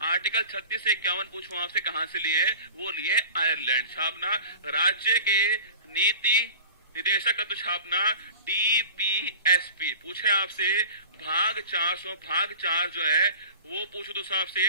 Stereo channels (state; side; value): inverted; both; correlation -0.39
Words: आर्टिकल 36 से 51 पूछूं आपसे कहाँ से लिए, वो लिए आयरलैंड। छापना राज्य के नीति निदेशक तत्व छापना डीपीएसपी। पूछे आपसे भाग 4 जो है वो पूछो दोस्तों आपसे